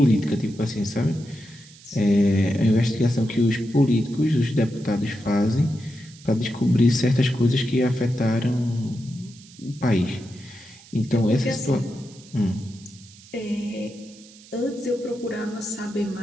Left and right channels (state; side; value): noise; right; hiss, 22 dB below the sound